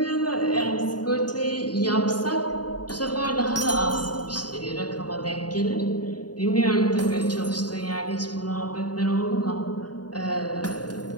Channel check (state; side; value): late; right; 0.70 ms